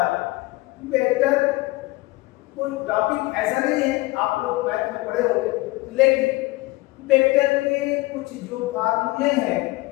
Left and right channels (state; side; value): quieter; right; 20.8 dB